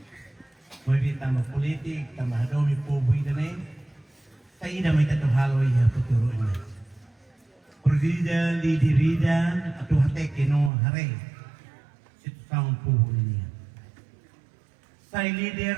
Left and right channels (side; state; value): left; drops out; at 10.7 s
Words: Moi bi tambah politik, tambah domi pobu idane. Sai ida mai tatu halo ya puturu ina. Perdida di dirida atau hate keno hare. Situ saung pobu ini. Sai